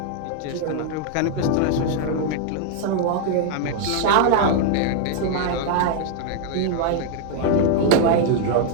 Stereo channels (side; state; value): both; different; correlation 0.00